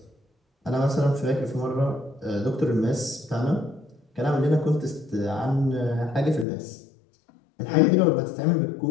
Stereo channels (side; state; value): right; drops out; at 6.5 s